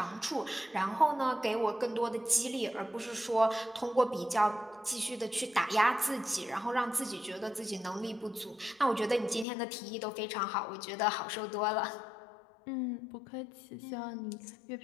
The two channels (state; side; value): drops out; right; at 9.5 s